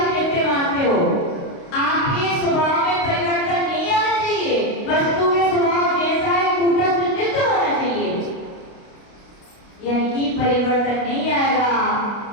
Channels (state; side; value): late; right; 29 ms